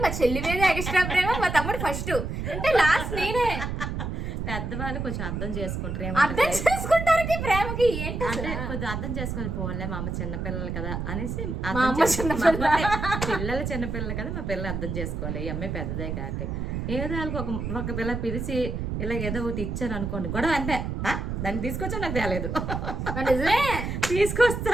మా చెల్లి మీద ఎక్స్ట్రా ప్రేమ, మా తమ్ముడు ఫస్ట్, అంటే లాస్ట్ నేనే. పెద్దవాళ్ళు కొంచెం అర్థం చేసుకుంటారు. అర్థం చేసుకుంటారు ప్రేమకి ఏంటి అంటే కొంచెం అర్థం చేసుకొని పోలే, మా అమ్మ చిన్నపిల్లలు కదా అనేసి, పిల్లలు చిన్నపిల్లలు కదా, మా పిల్లలు అర్థం చేసుకోవాలి, ఈ అమ్మాయి పెద్దదే కాబట్టి. ఏదో ఒక పిల్ల పిలిచి ఇలా ఏదో ఒకటి ఇచ్చాను అనుకోండి, గొడవ అంటే దాన్ని తీసుకొచ్చా నాకు తేలేదు,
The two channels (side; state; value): right; noise; rumble, 3 dB below the sound